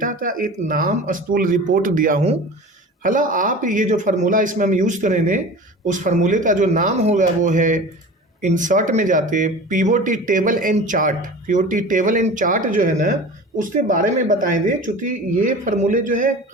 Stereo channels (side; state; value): both; normal; correlation 0.36